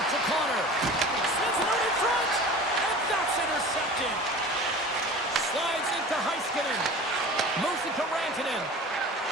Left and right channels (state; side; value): normal; both; correlation 0.38